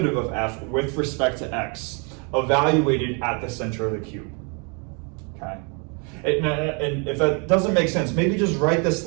of f with respect to x, evaluated at the center of the cube. Okay? And if that doesn't make sense, maybe just write this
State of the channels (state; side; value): quieter; left; 35.5 dB